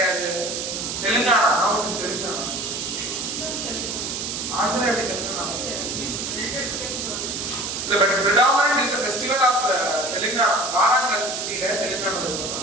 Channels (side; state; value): right; noise; hiss, 4 dB below the sound